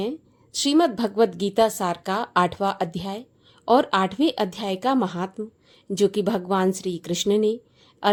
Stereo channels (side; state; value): both; identical; correlation 1.00